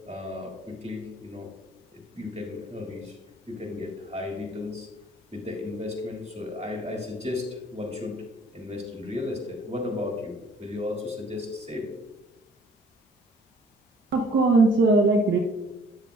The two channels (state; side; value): normal; both; correlation 0.57